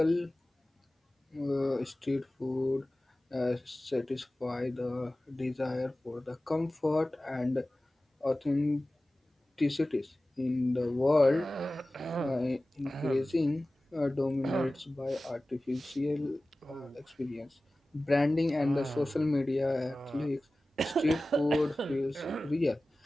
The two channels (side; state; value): both; normal; correlation 0.97